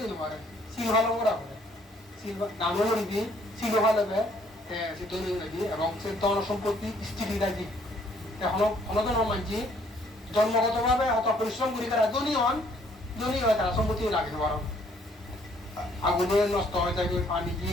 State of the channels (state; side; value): normal; both; correlation 0.64